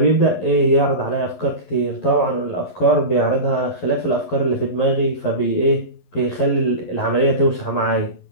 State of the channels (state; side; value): late; right; 11 ms